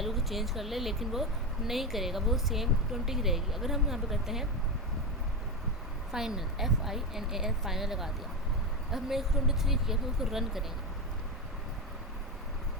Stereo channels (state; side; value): normal; both; correlation 0.16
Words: को चेंज कर ले, लेकिन वो नहीं करेगा, वो सेम 20 ही रहेगी। अगर हम यहाँ पे करते हैं फाइनल FINAL फाइनल लगा दिया, अब हमने 23 किया, फिर उसको रन करेंगे।